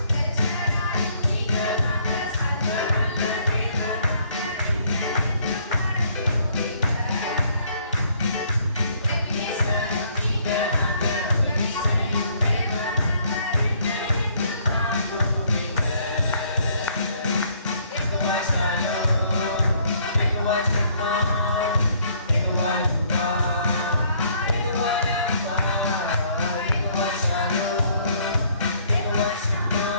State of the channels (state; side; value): inverted; both; correlation -0.64